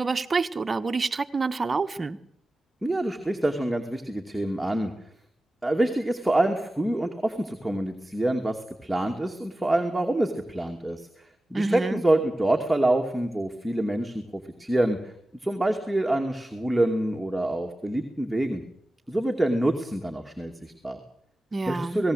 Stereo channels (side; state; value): both; normal; correlation 0.95